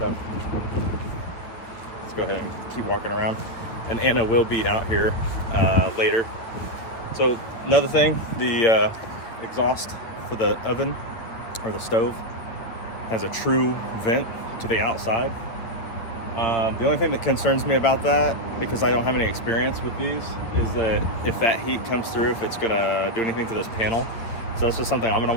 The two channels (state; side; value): late; right; 8.9 ms